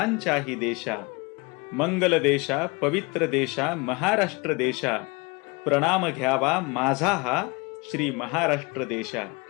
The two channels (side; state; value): right; quieter; 27.8 dB